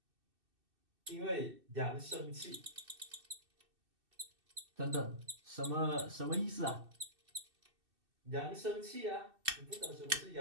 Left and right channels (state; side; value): late; left; 2.6 ms